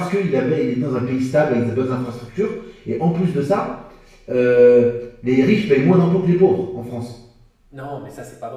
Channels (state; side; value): identical; both; correlation 1.00